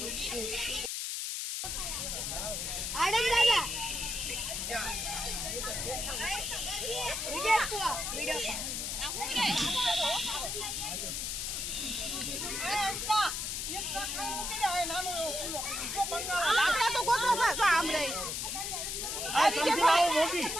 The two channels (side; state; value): left; noise; hiss, 2 dB below the sound